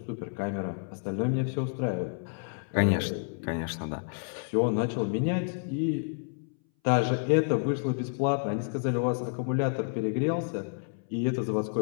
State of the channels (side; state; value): right; silent; 58 dB below the other